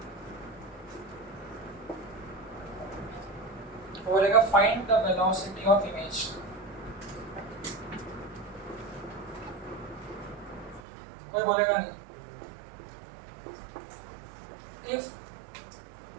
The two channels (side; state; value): left; drops out; at 10.8 s